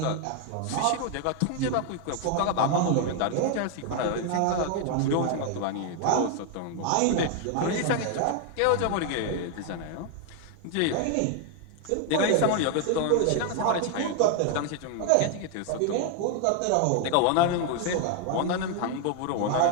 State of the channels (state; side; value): different; both; correlation 0.00